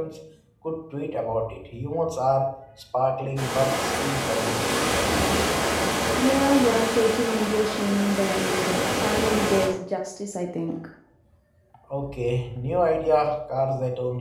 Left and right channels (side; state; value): both; identical; correlation 1.00